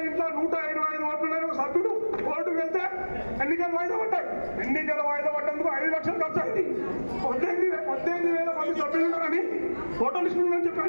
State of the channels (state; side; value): inverted; both; correlation -1.00